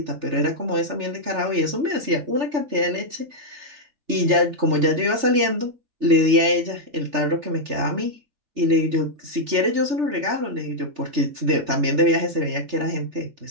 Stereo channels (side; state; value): left; late; 3.3 ms